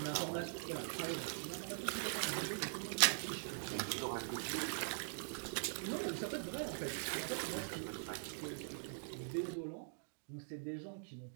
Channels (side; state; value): left; silent; digital silence